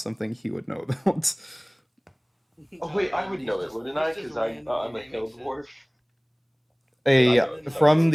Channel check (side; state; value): both; identical; correlation 1.00